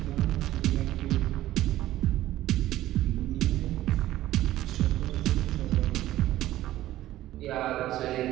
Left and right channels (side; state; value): left; quieter; 14.6 dB